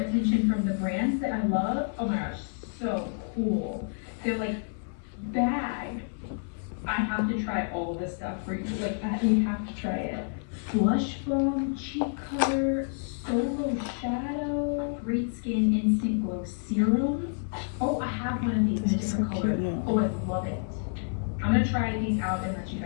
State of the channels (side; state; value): right; silent; 56 dB below the other